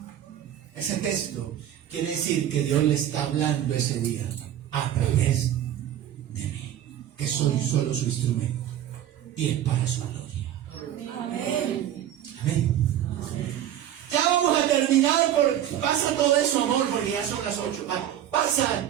ese texto quiere decir que Dios le está hablando ese día a través de mí, que soy solo su instrumento y es para su gloria. Amén. Amén. Ya vamos a terminar. Pasa todo eso, amor, porque ya son las 8. Pasa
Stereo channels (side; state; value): left; quieter; 11.2 dB